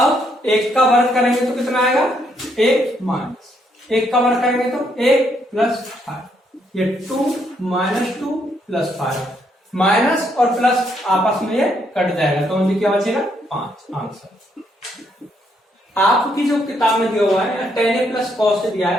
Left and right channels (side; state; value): both; normal; correlation 0.73